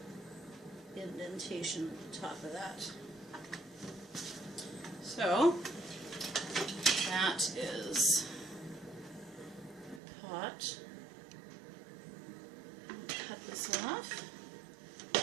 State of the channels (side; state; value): left; drops out; at 10.0 s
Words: indentation at the top of that. So that is the pot. Cut this off.